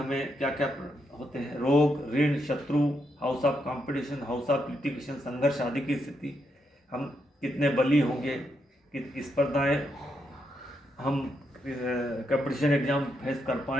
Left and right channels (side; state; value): both; normal; correlation 0.80